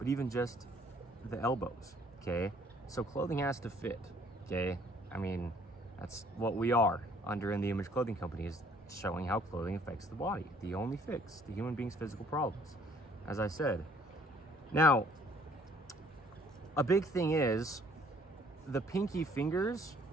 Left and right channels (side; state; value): both; normal; correlation 0.60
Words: even just the elbows, okay? So clothing has to fit, okay? I mean, that's what we are under In The Image Clothing Company, is showing how clothing affects the body. The only fix to human beings' physical problems, as I said. Now, a big thing is the pinky fingers